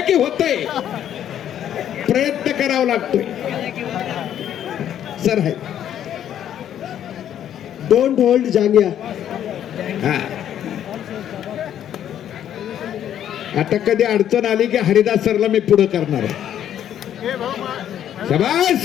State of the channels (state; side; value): quieter; right; 10.4 dB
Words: की होतंय, प्रयत्न करावा लागतोय. सर आहे डोंट होल्ड जांग्या. हा. आता कधी अडचण आली की हरिदास सरला मी पुढे करणार आहे.